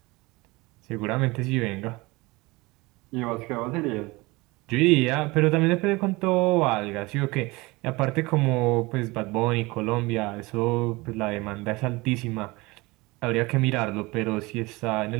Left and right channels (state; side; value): quieter; left; 22.9 dB